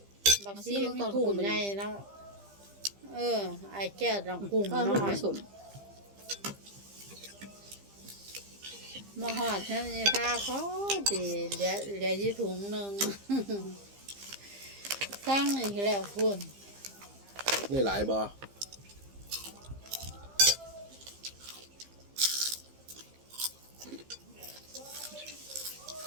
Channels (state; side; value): late; left; 15 ms